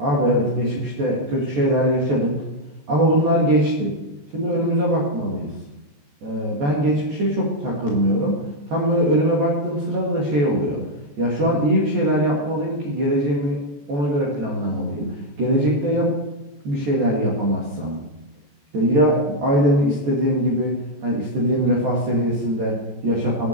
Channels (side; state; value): left; late; 14 ms